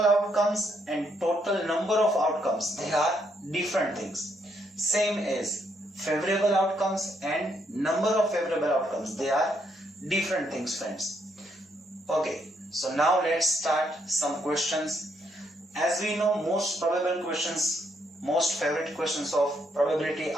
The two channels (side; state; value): both; normal; correlation 0.74